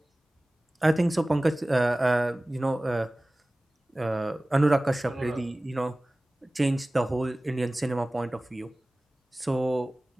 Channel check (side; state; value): both; normal; correlation 0.98